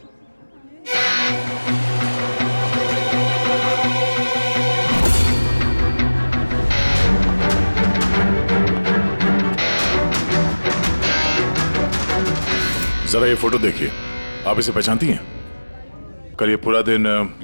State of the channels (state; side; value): inverted; both; correlation -1.00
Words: जरा ये फोटो देखिए, आप इसे पहचानती हैं? कल ये पूरा दिन